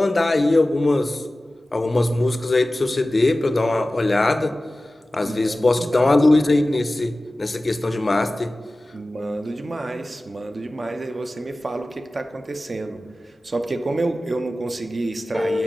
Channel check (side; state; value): both; normal; correlation 0.96